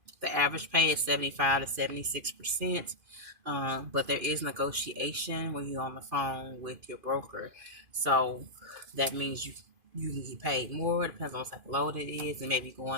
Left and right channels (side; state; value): left; late; 2.5 ms